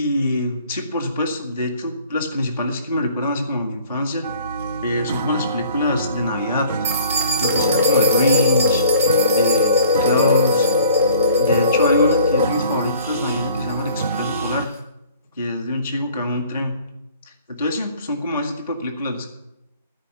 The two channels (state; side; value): inverted; both; correlation -0.53